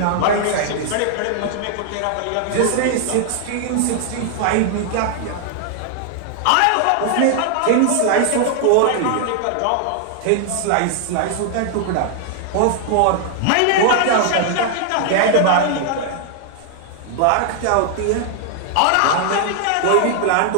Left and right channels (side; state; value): both; different; correlation 0.00